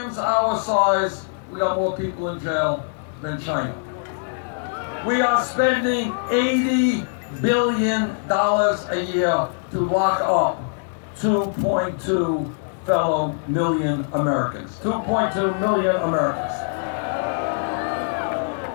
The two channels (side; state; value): right; silent; digital silence